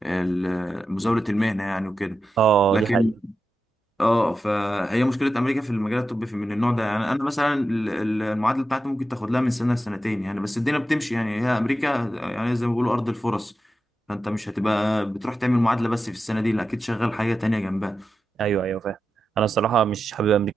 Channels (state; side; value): normal; both; correlation 0.90